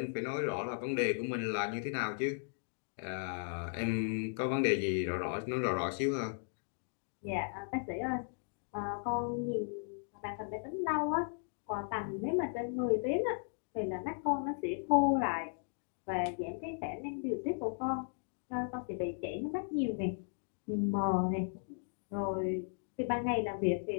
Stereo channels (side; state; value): right; silent; digital silence